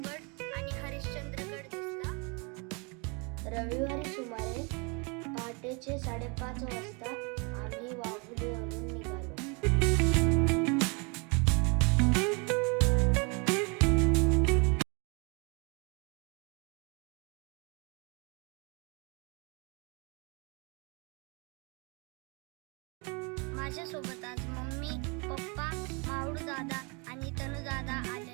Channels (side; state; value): left; quieter; 32.0 dB